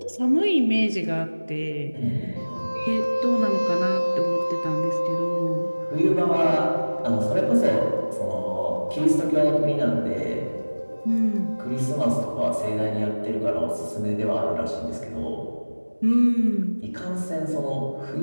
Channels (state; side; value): inverted; both; correlation -1.00